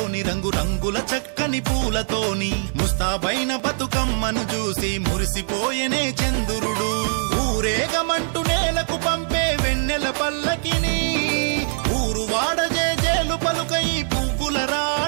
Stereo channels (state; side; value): silent; left; 64 dB below the other